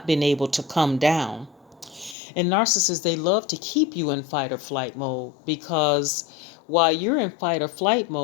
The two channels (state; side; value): drops out; right; at 2.1 s